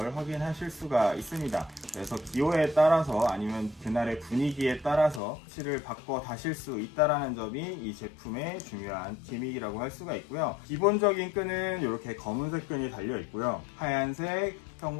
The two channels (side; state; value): right; drops out; at 5.2 s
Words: 확인하실 수가 있습니다. 그래서 기호에 따라서 아니면 그날의 분위기에 따라서 패치를 바꿔 다실 수 있다라는 점이 이 제품의 중요한 기믹이라고 할 수가 있고요. 기본적인 끈은 이렇게 검은색 끈이 달려 있고요. 하얀색,